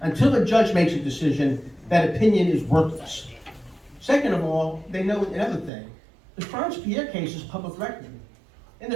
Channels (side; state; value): left; drops out; at 5.7 s